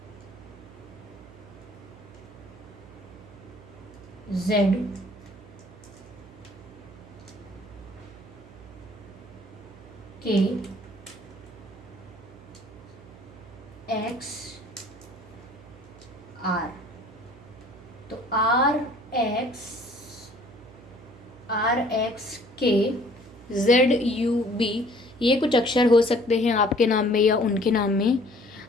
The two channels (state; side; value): noise; right; hum, 20 dB below the sound